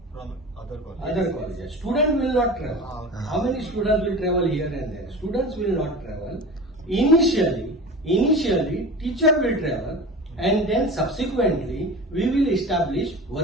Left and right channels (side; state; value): both; normal; correlation 0.33